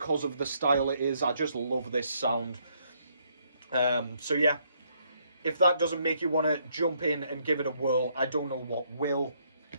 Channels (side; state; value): both; inverted; correlation -0.71